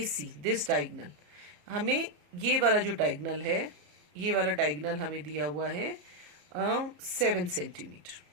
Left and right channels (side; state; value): left; late; 34 ms